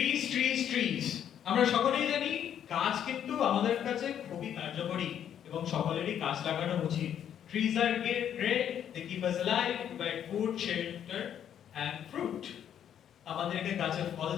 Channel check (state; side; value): quieter; right; 9.6 dB